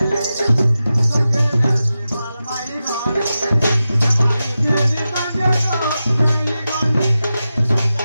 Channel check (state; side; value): inverted; both; correlation -0.92